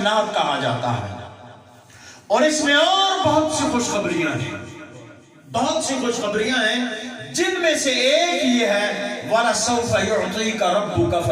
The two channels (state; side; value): identical; both; correlation 1.00